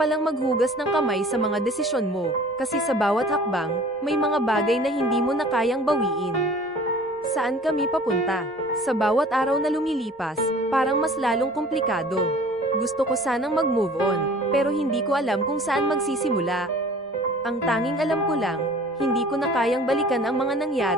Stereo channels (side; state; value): both; normal; correlation 0.47